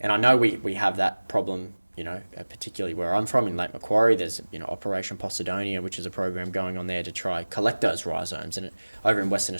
I know we have that problem, particularly where I'm from in Lake Macquarie. There's Operation Posidonia, which is a program going on there to try collect those rhizomes. And over in Western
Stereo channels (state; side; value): inverted; both; correlation -1.00